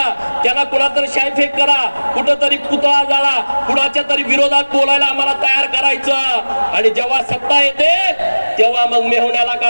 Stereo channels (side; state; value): both; inverted; correlation -1.00